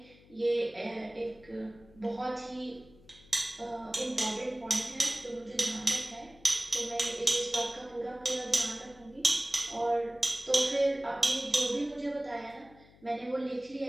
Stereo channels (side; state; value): left; noise; hum, 25 dB below the sound